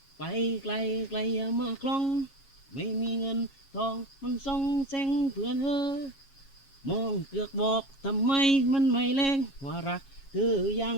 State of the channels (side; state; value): right; late; 7.3 ms